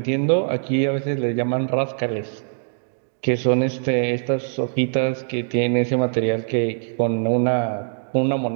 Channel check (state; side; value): silent; left; digital silence